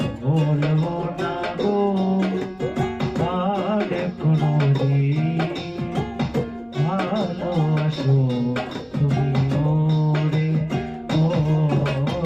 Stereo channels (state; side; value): identical; both; correlation 1.00